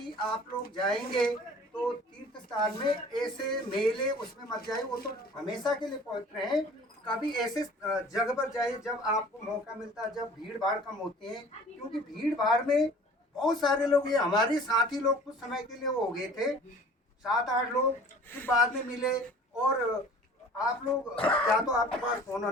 आप लोग जाएंगे तो तो तीर्थ स्थान में ऐसे मेले उसमें मत जाए, वो तो हमेशा के लिए पवित्र हैं। कभी ऐसे जगह पर जाए जब आपको मौका मिलता है, जब भीड़ भाड़ कम होती है, क्योंकि भीड़ भाड़ में बहुत सारे लोग, ये हमारे साथी लोग कुछ समय के लिए वो हो गए थे, 7-8 लोग, फिर बाद में मिले। और आप लोग, क्या तो आपके पास फोन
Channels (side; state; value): both; normal; correlation 0.47